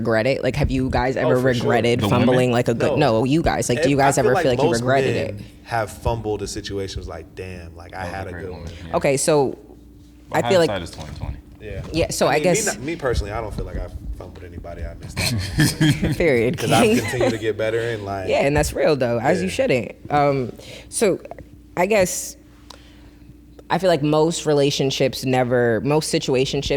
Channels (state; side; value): identical; both; correlation 1.00